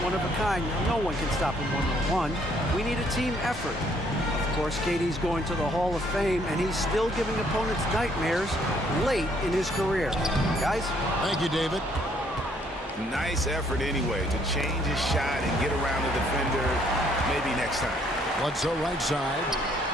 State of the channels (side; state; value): both; normal; correlation 0.66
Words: one of a kind. No one can stop him one-on-one. We need a team effort. Of course, KD's going to the Hall of Fame, and he's still giving opponents nightmares late in his career. Guys? Thank you, David. Nice effort anyway to change his shot and get around the defender maybe next time. Bledsoe right side.